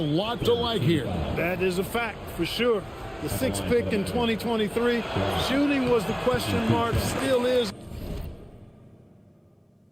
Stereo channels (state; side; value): identical; both; correlation 1.00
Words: to like here. That is a fact, for sure. The sixth pick in 2023. Shooting was the question mark, still is